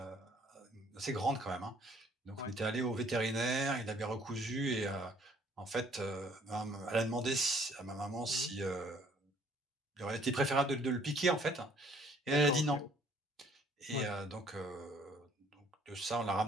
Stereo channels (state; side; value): normal; both; correlation 0.60